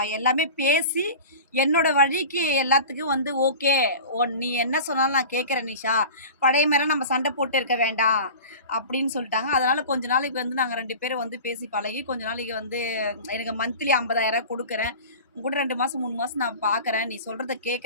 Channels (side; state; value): both; inverted; correlation -0.36